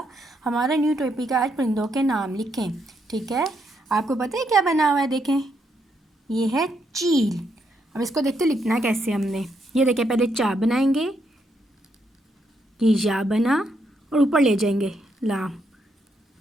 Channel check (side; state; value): both; normal; correlation 0.77